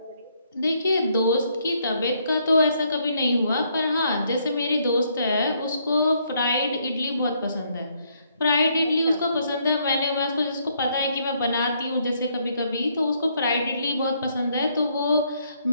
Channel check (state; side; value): inverted; both; correlation -0.71